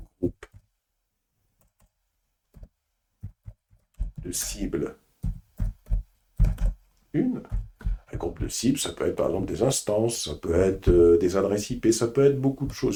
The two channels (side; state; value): both; identical; correlation 1.00